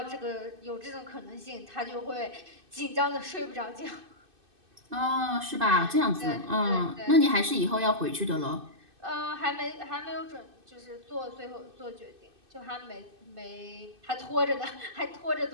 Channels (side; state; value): left; late; 2.6 ms